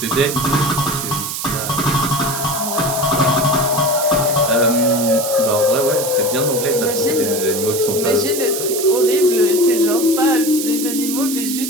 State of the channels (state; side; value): noise; right; hiss, 5 dB below the sound